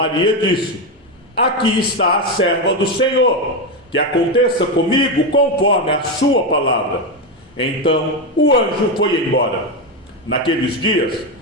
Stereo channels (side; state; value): both; normal; correlation 0.10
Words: disse: aqui está a serva do Senhor, que aconteça comigo conforme a sua palavra. Então o anjo foi embora. Naqueles dias,